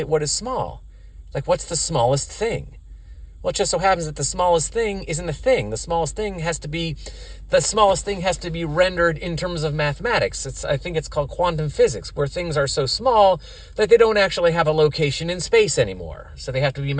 what is small? Like, what's the smallest thing? Well, it just so happens that the smallest thing isn't a thing. The smallest thing has to be rendered in terms of mathematics. I think it's called quantum physics, where things are so small that they don't actually have a location in space anymore. So they have to be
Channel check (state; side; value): identical; both; correlation 1.00